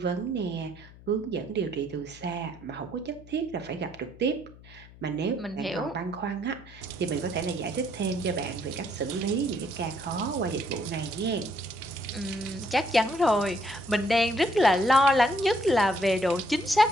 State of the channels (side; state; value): left; noise; hum, 21 dB below the sound